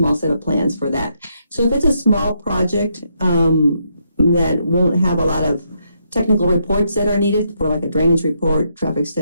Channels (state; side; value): inverted; both; correlation -0.77